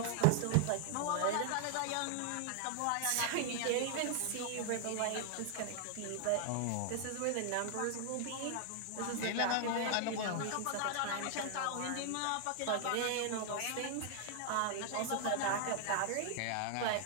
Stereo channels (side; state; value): both; different; correlation 0.00